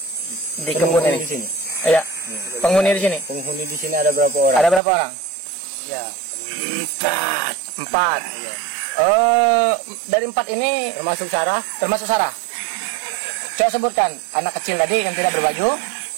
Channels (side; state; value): left; drops out; at 4.8 s